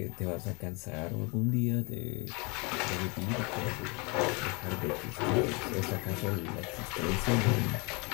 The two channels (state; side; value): quieter; right; 29.8 dB